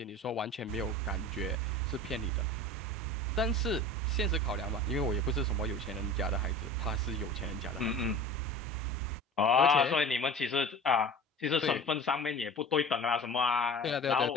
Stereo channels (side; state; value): both; normal; correlation 0.38